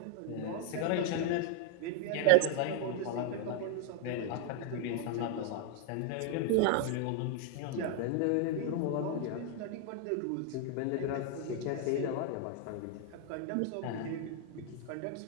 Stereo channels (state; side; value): different; both; correlation 0.00